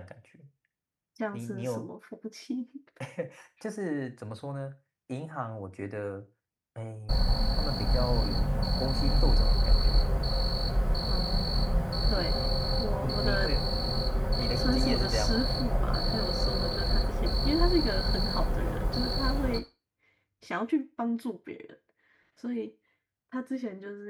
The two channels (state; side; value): identical; both; correlation 1.00